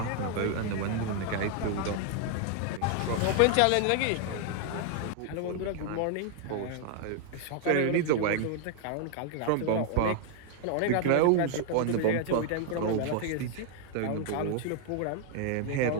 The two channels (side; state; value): both; different; correlation 0.00